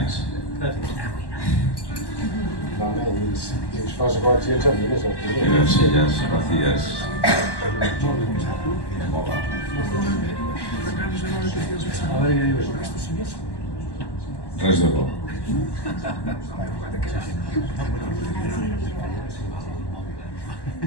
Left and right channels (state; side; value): late; right; 1.1 ms